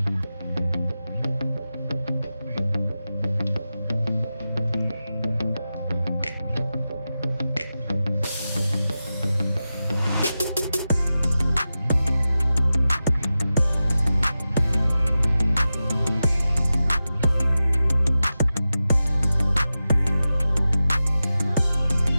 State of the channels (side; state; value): both; inverted; correlation -0.93